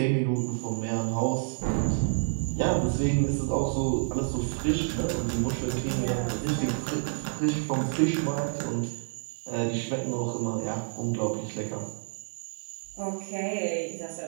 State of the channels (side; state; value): left; silent; digital silence